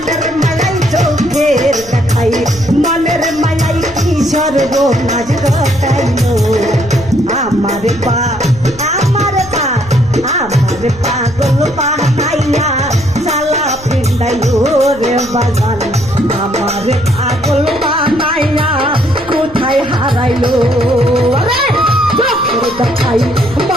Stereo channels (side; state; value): left; noise; rumble, 20 dB below the sound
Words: মালাই চোখের দেখাই মনের মালাই কি সর্বনাশ ঘটাইলো আমার পা আমার পা আমার পাগল বানাইয়া সালা পিন্ডাইলো রে বাগান আমার পাগল বানাইয়া কোথায় হারাইলো চোখের দেখাই